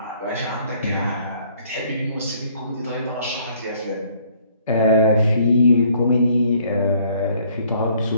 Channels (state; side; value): inverted; both; correlation -0.62